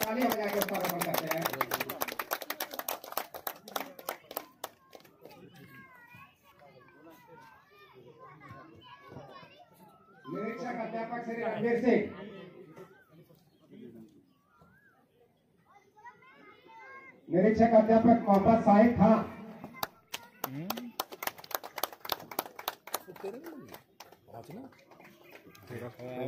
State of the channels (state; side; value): identical; both; correlation 1.00